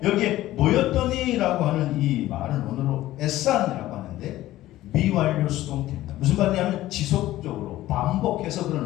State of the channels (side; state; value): right; quieter; 15.3 dB